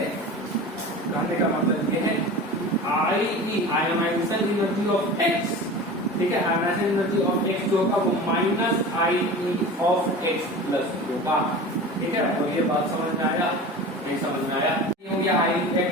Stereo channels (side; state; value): both; normal; correlation 0.34